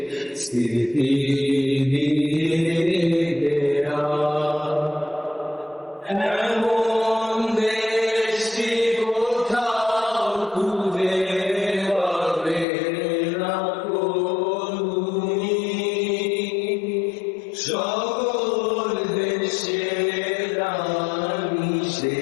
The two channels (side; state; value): right; drops out; at 12.7 s